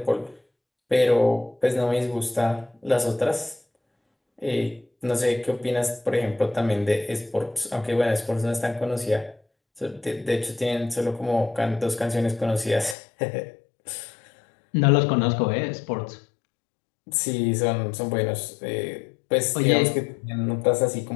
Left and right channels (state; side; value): drops out; right; at 13.0 s